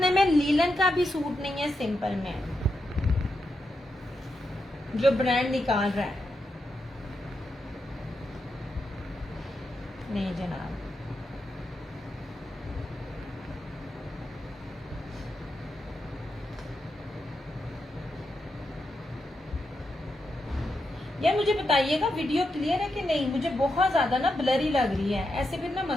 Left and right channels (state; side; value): normal; both; correlation 0.85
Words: में लीलन का भी सूट नहीं है सिंपल में, जो ब्रांड निकाल रहा है। नहीं जनाब, यार मुझे बताइएगा वीडियो क्लियर है कि नहीं? मुझे बहुत ज्यादा ना ब्लरी लग रही है, ऐसे फिर ना